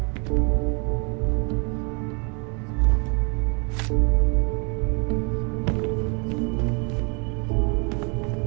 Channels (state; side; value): quieter; left; 34.0 dB